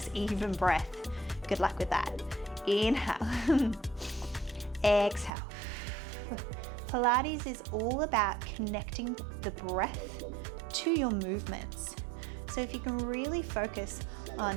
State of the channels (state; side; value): drops out; left; at 5.3 s